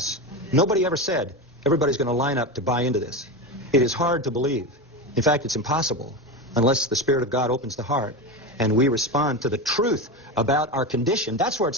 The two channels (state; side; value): normal; both; correlation 0.19